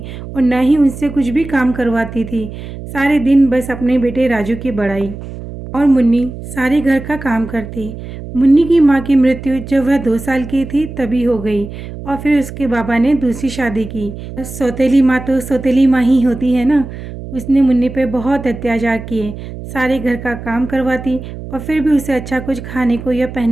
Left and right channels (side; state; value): right; noise; hum, 11 dB below the sound